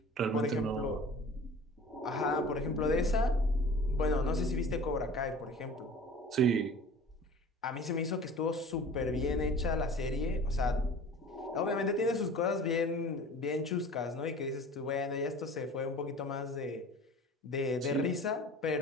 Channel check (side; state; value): both; normal; correlation 0.42